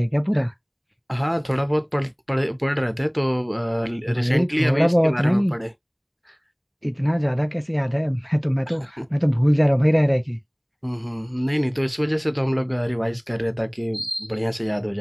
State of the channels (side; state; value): both; identical; correlation 1.00